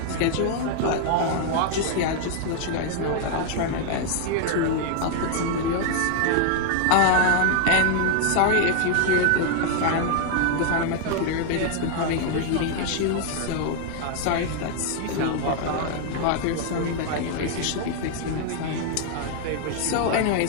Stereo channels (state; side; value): different; both; correlation 0.00